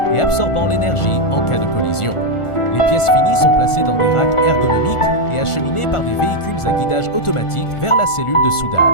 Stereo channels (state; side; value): late; right; 1.4 ms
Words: et absorbant l'énergie en cas de collision. Les pièces finies sont placées dans des racks ergonomiques et acheminées par des véhicules à guidage automatique vers la cellule de